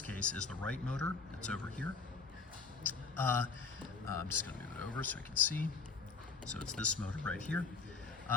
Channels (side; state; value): right; quieter; 4.7 dB